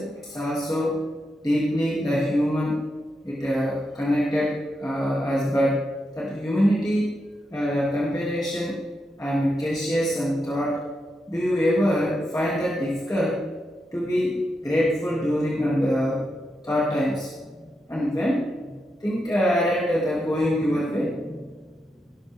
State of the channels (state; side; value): normal; both; correlation 0.85